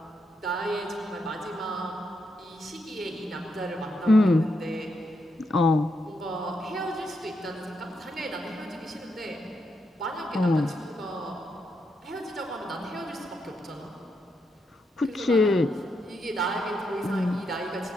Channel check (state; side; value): normal; both; correlation 0.81